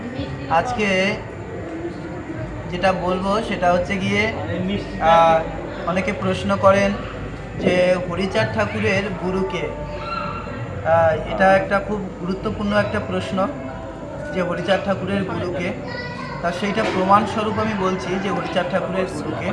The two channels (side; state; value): both; identical; correlation 1.00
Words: আজকে যেটা বলবো সেটা হচ্ছে গিয়ে অনেকে প্রশ্ন করেন যে হরিচাঁদ ঠাকুরের গুরুকে। এটা একটা খুব গুরুত্বপূর্ণ একটা প্রশ্ন যে হরিচাঁদ ঠাকুরের গুরুকে। তা সেইটা প্রমাণস্বরূপ আমি বলছি যে হরিচাঁদ ঠাকুরের গুরুকে।